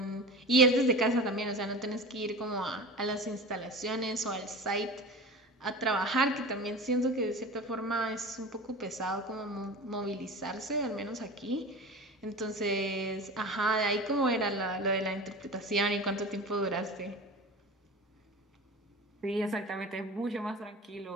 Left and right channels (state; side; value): normal; both; correlation 0.33